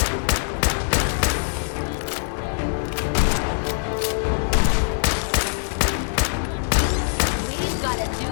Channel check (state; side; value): silent; right; digital silence